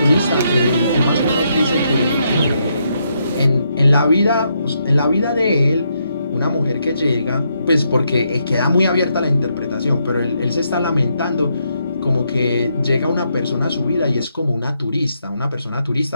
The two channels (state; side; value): inverted; both; correlation -0.78